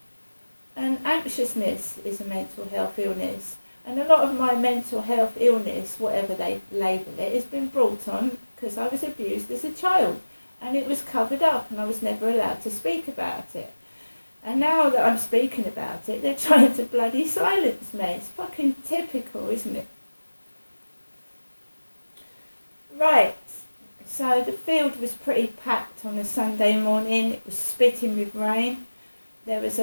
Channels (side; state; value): both; inverted; correlation -1.00